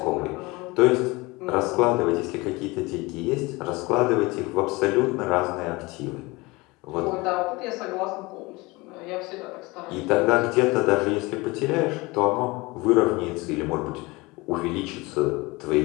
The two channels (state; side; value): quieter; right; 23.5 dB